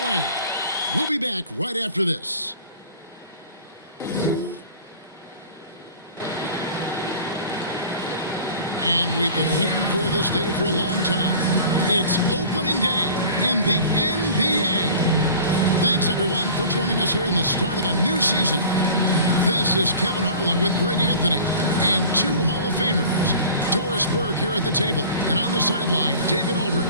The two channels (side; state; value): both; inverted; correlation -0.42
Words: We'll be back right after this. And we've been waiting for this day for a long time. It's opening day in the NBA. Thanks, everyone, for joining us here in the start of a new season. This is Kevin Harlan with Greg Anthony and two Hall of Famers. Doris Burke here at the table, and on the sideline, David